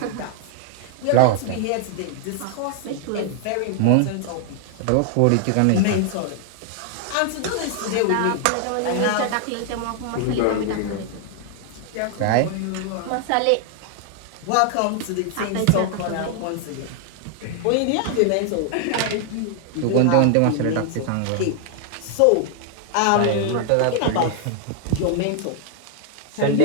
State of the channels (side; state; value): both; different; correlation 0.00